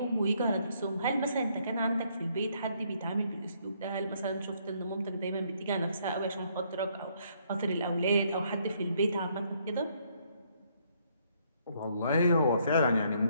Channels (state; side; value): inverted; both; correlation -0.69